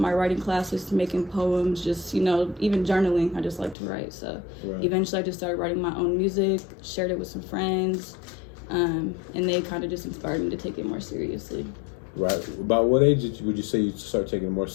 writing classes, making poems, just, you know, even journaling. I just like to write. So eventually I just started writing my own music, shared it with some friends, and they kind of just inspired me to take it more seriously. Right. About what age would you say you start taking it more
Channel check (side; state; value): right; drops out; at 3.8 s